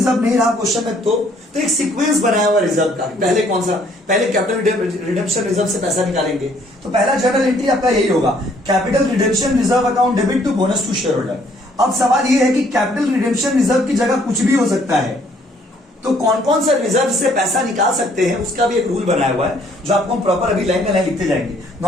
नहीं रहा क्वेश्चन में, तो एक सीक्वेंस बनाया हुआ रिजर्व का। पहले कौन सा, पहले कैपिटल रिडेम्पशन रिजर्व से पैसा निकालेंगे। तो पहला जनरल एंट्री आपका यही होगा, capital redemption reserve account debit to bonus to shareholder. अब सवाल यह है कि कैपिटल रिडेम्पशन रिजर्व की जगह कुछ भी हो सकता है, तो कौन कौन सा रिजर्व से पैसा निकाल सकते हैं उसका भी एक रूल बनाया हुआ है, जो आपको हम प्रॉपर अभी लाइन में लाइन लिखते जाएंगे।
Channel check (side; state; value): both; normal; correlation 0.63